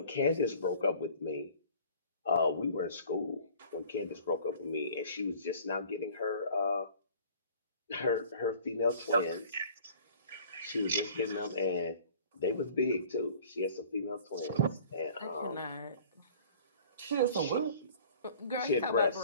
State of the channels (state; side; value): inverted; both; correlation -0.49